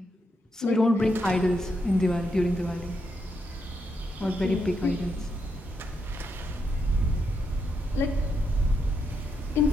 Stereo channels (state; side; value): normal; both; correlation 0.81